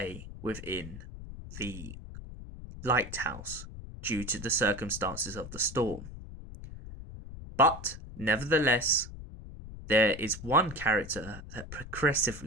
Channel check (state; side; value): noise; left; rumble, 12 dB below the sound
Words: within the lighthouse due to the circumstances of the storm. But nevertheless, there is one character that